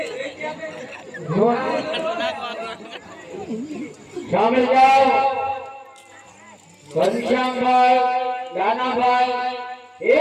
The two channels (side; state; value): both; identical; correlation 1.00